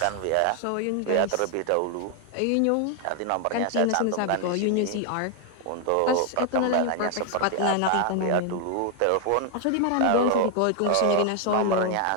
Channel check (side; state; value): both; different; correlation 0.00